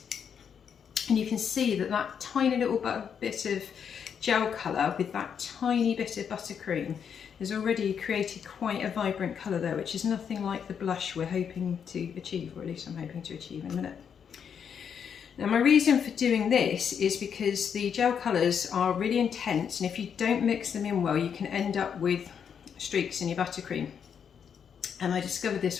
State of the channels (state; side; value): quieter; right; 7.5 dB